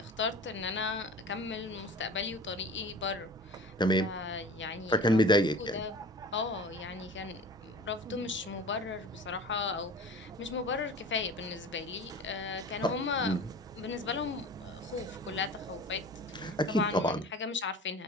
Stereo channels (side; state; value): both; normal; correlation 0.40